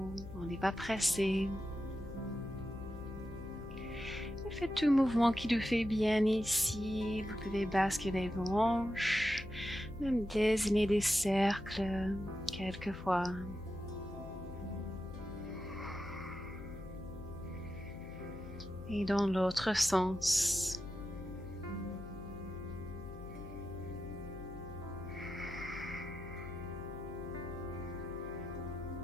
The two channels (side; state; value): left; noise; hum, 12 dB below the sound